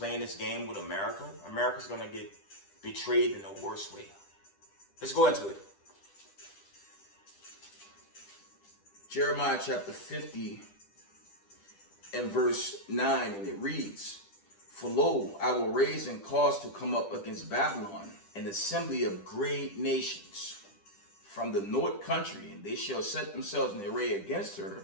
this game with America? America's gonna get betrayed in the worst way. Let's go into it. Jeremiah chapter 50 and verse 9, and it reads, "For lo, I will raise and cause to come up against Babylon an assembly of great nations from the north country, and they shall set themselves in array against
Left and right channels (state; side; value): late; right; 10 ms